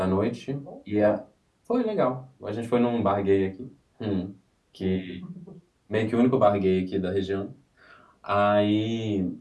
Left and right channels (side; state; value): both; identical; correlation 1.00